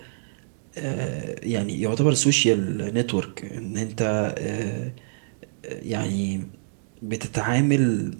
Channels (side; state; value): left; silent; digital silence